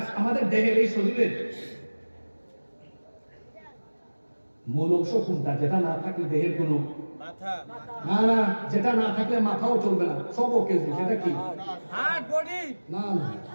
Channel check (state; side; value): inverted; both; correlation -1.00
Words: আমাদের দেহের এই শরীরের মূল অংশ কোনটা? যেটা না থাকলে দেহের কোনো না না, যেটা না থাকলে মাথাও চলবে না, সব ওকে। সেটা কি? না না,